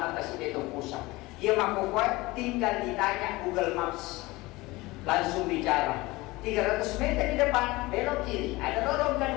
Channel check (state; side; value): quieter; right; 21.1 dB